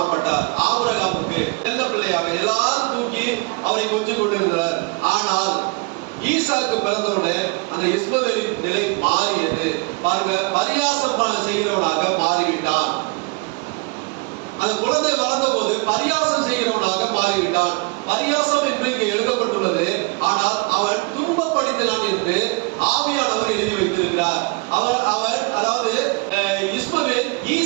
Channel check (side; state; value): left; quieter; 28.4 dB